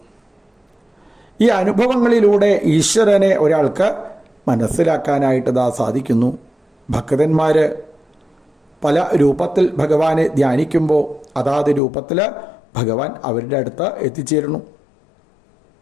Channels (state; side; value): drops out; right; at 11.8 s